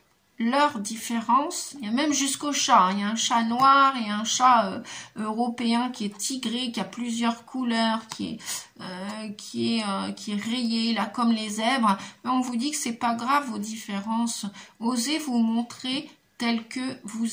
leurs différences, il y a même jusqu'au chat, hein. Il y a un chat noir et un chat européen qui est tigré, qui a plusieurs couleurs, qui est rayé là comme les zèbres. Mais on vous dit que c'est pas grave vos différences. Osez vous montrer tel que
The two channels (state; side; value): identical; both; correlation 1.00